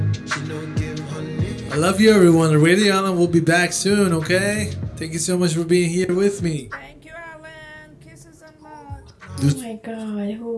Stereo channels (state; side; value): identical; both; correlation 1.00